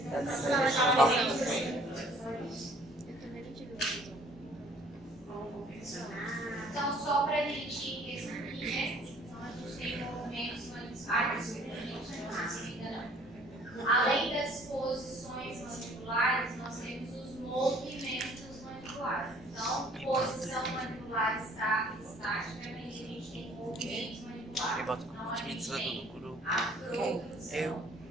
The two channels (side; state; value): both; normal; correlation 0.56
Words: Eu também não tive uma Então, só para a gente resumir, né? Então, a gente tem movimentos mandibuláres, além das posições mandibulares, nós temos os movimentos mandibulares. Então, posição mandibular estática, a gente tem movimentos mandibulares. Então, a gente tem a protrusão.